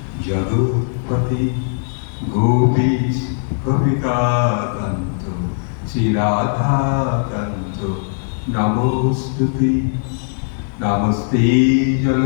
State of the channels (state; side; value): silent; right; 64 dB below the other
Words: জগৎপতি গোপীশ কবিকাকান্ত শ্রী রাধাকান্ত নমস্তুতে। নমস্তে